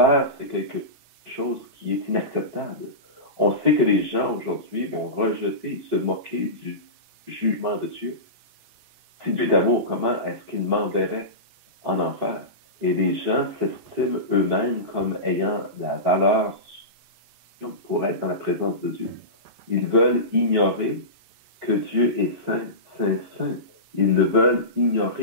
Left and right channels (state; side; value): late; left; 11 ms